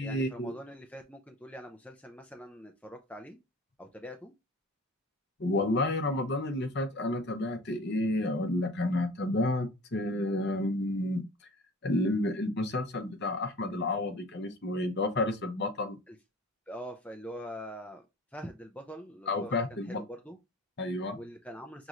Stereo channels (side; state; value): both; normal; correlation 0.43